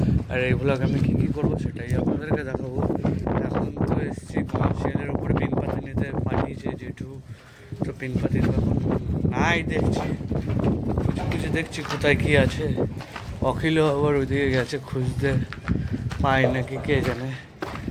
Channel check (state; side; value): identical; both; correlation 1.00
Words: আর এই ভ্লগ আমি কী কী করবো সেটাই আপনাদেরকে দেখাবো। এখন তো এসেছি কমার্শিয়ালের ওপরে পিনপাতি নিতে, পাঠিয়েছে যেটু। তো পিনপাতি তো এখন নাই দেখছি, কিছু কিছু দেখছি কোথায় কী আছে। অখিলও আবার ওইদিকে গেছে খুঁজতে, পায় নাকি কে জানে।